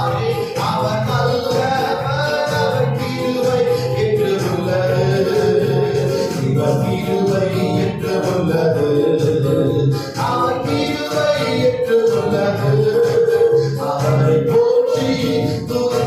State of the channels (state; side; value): identical; both; correlation 1.00